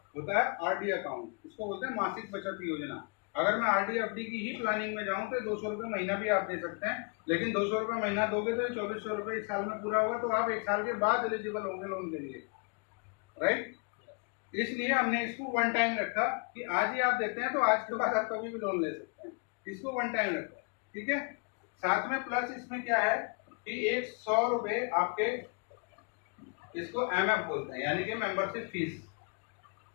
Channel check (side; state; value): right; quieter; 35.4 dB